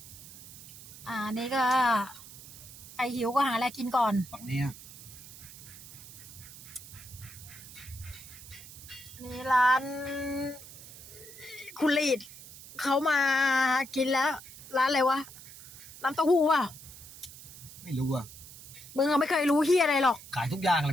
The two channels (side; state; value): right; noise; hiss, 16 dB below the sound